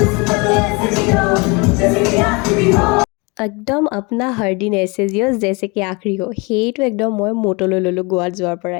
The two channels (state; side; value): quieter; right; 28.4 dB